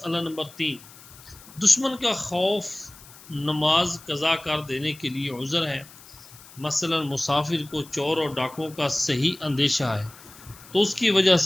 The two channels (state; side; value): noise; left; hiss, 21 dB below the sound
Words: نمبر 3، دشمن کا خوف نماز قضا کر دینے کے لیے عذر ہے۔ مثلا مسافر کو چور اور ڈاکوؤں کا صحیح اندیشہ ہے تو اس کی وجہ